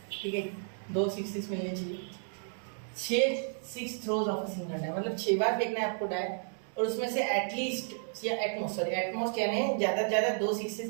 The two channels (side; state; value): left; silent; digital silence